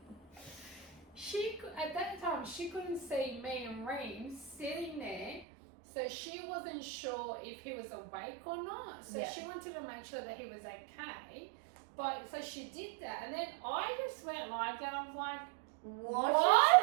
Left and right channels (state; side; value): drops out; left; at 5.5 s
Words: at that time she couldn't see me and Reem sitting there, so she wasn't sure if he was awake or not. So Yeah. she wanted to make sure that he was okay. But so she did that, and then I just went like that. I was like, What?